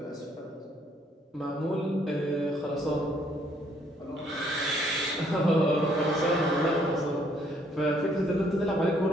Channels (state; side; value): normal; both; correlation 0.66